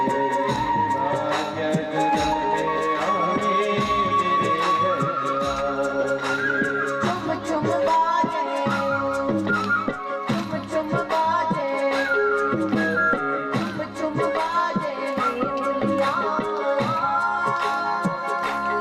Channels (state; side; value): identical; both; correlation 1.00